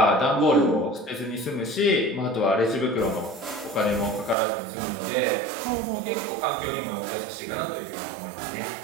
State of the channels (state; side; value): drops out; left; at 4.4 s